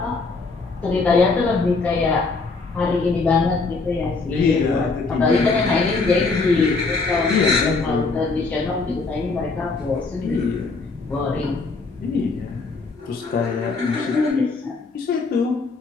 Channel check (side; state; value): right; quieter; 4.0 dB